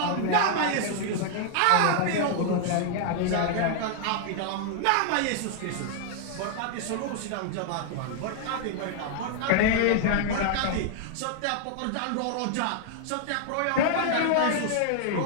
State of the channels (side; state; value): both; different; correlation 0.00